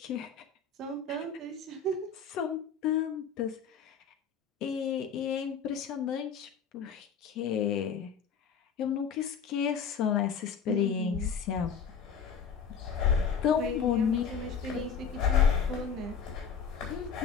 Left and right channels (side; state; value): right; quieter; 6.5 dB